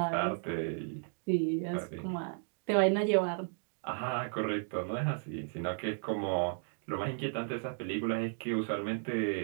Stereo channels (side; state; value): left; silent; 55 dB below the other